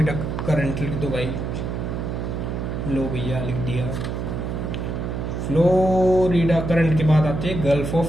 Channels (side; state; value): right; noise; hum, 3 dB below the sound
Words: करंट, लिख दो भाई, लो भैया लिख दिया। फ्लोरिडा करंट के बाद आती है गल्फ